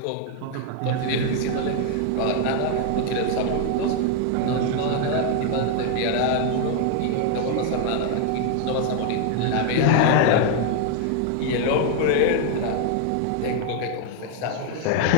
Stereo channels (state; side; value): different; both; correlation 0.00